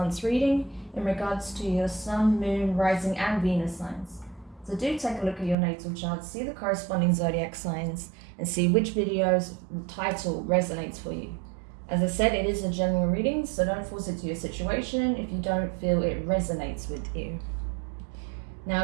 reading in regards to your Sun, Moon, Rising and Venus signs. So do take a look at your natal chart, see the corresponding zodiac signs, and see which video's title resonates for you. As I said, it is a general reading, so don't force it to your situation if you don't feel it resonates with you.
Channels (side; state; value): left; drops out; at 5.6 s